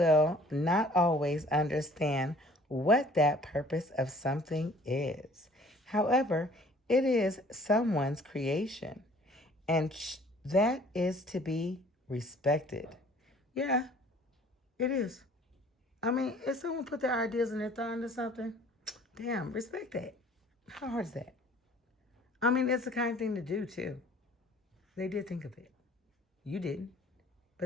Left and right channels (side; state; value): both; normal; correlation 0.53